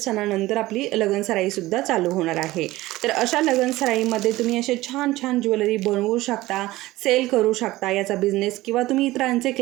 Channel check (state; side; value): quieter; left; 17.8 dB